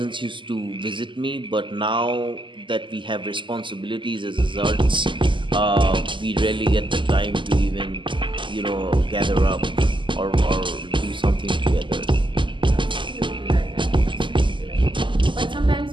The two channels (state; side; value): late; left; 0.24 ms